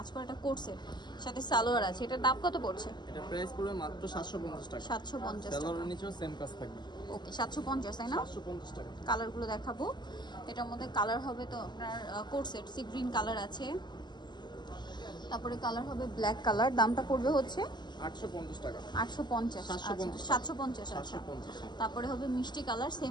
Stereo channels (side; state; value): right; late; 0.21 ms